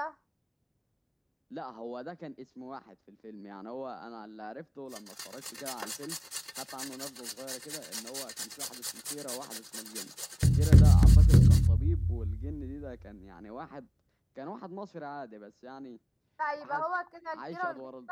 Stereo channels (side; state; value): both; identical; correlation 1.00